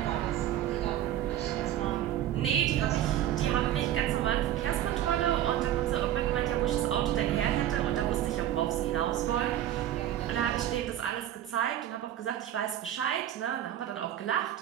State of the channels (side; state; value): left; quieter; 11.9 dB